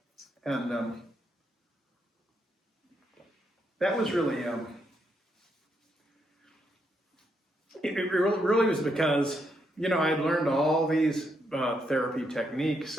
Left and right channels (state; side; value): normal; both; correlation 0.78